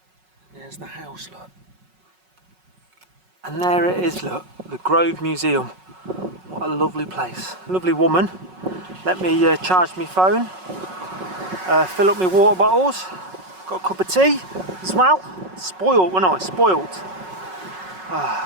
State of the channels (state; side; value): late; left; 5.4 ms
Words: There's the house, look. And there it is, look, the Grove Museum. What a lovely place. Lovely woman. Let me charge my phone. Fill up my water bottles. Got a cup of tea as well. Spoiled, wasn't I? Spoiled.